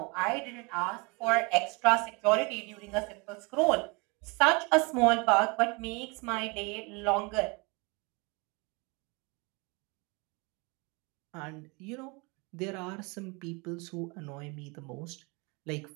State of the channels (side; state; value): left; quieter; 29.0 dB